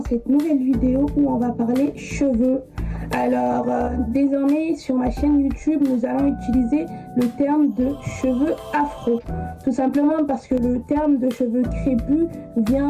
nouvelle vidéo où on va parler cheveux. Alors désormais sur ma chaîne YouTube nous allons utiliser le terme de cheveux afro. Tout simplement parce que le terme de cheveux crépus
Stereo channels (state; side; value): identical; both; correlation 1.00